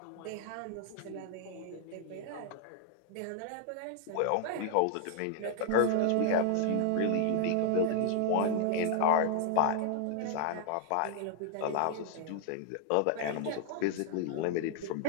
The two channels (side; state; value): both; different; correlation 0.00